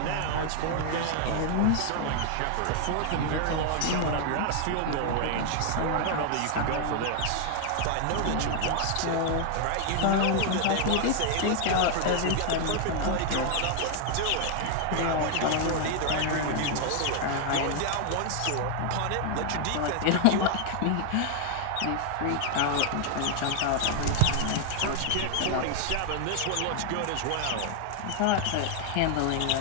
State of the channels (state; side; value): different; both; correlation 0.00